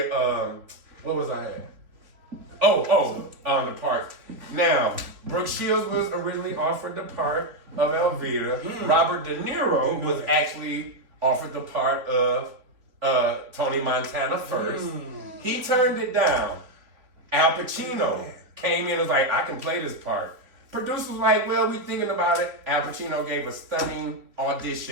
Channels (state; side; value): late; left; 3.6 ms